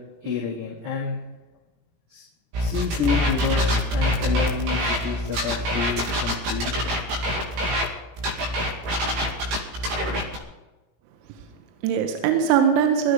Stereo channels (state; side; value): late; left; 18 ms